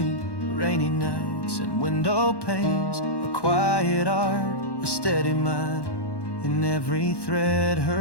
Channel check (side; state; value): right; late; 1.1 ms